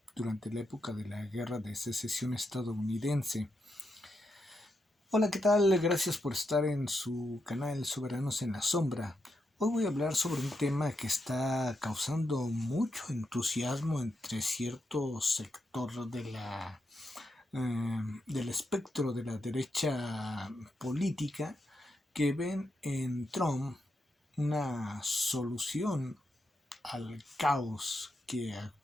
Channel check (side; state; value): both; normal; correlation 0.84